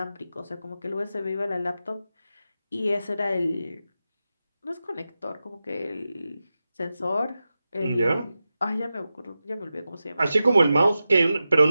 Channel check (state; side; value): inverted; both; correlation -0.92